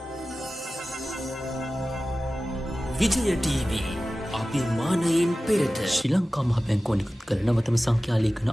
විජය ටීවී අභිමානයෙන් පෙරට ශ්‍රී ලංකා මහ බැංකුව නිකුත් කළ නවතම සංඛ්‍යා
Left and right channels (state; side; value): normal; both; correlation 0.96